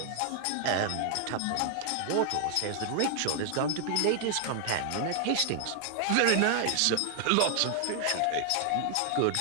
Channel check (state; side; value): different; both; correlation 0.00